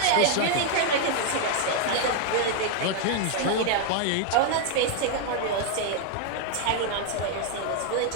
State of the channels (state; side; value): different; both; correlation 0.00